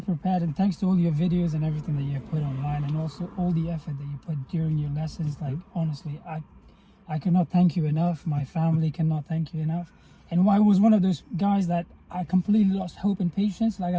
prepared, and thanks to all your videos and everything that you put online, and also all the effort that you put during your lessons. Like honestly, I cannot thank you enough. My family cannot thank you enough. And I was one of those guys that I completely lost hope and patience. Like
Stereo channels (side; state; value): both; identical; correlation 1.00